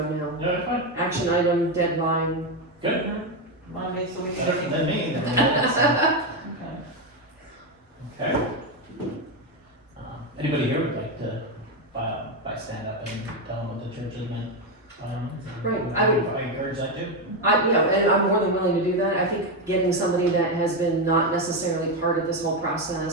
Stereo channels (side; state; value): both; normal; correlation 0.09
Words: now. Yeah, fine. Action item, deadline. Good. Monday, so we can. Better than me, then. Okay. Okay. Anybody here would like to, by stand up and tell them what the church has been? Right, I would- I encourage that too. And I'm more than willing to do that. I think getting somebody that has been not necessarily part of this whole